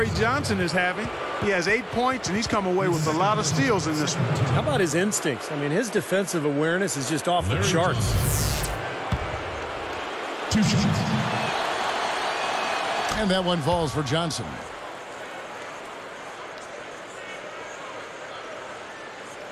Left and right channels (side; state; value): both; identical; correlation 1.00